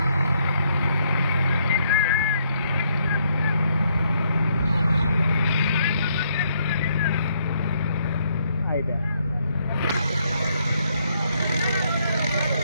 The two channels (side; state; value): both; inverted; correlation -0.73